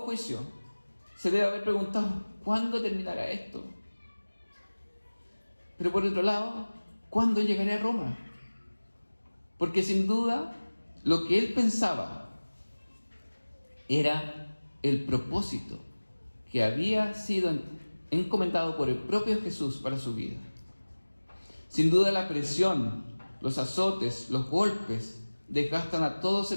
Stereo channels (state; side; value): inverted; both; correlation -1.00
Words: se debe haber preguntado: ¿cuándo terminará esto? Pero por otro lado, ¿cuándo llegaré a Roma? Porque sin duda, lo que él pensaba era el propósito que había sido encomendado por el propio Jesús para su vida. Sin duda, la presión, los azotes, los golpes desgastan a todo